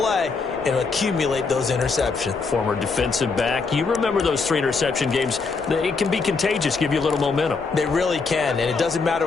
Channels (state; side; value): quieter; right; 4.6 dB